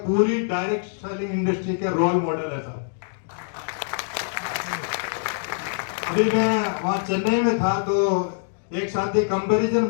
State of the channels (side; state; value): right; silent; digital silence